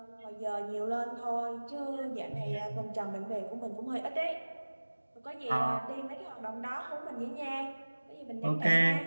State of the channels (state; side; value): inverted; both; correlation -1.00